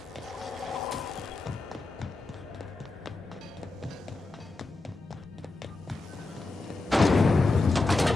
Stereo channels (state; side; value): quieter; right; 3.3 dB